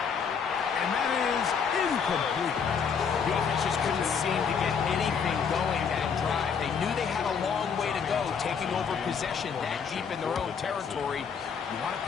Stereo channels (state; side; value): quieter; right; 6.5 dB